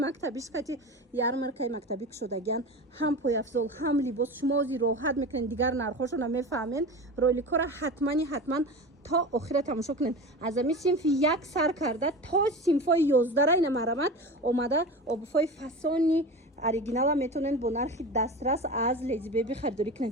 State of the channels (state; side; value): normal; both; correlation 0.30